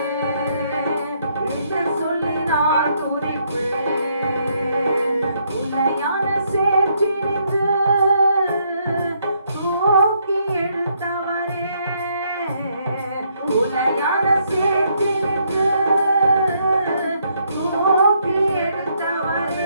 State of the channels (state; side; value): inverted; both; correlation -0.72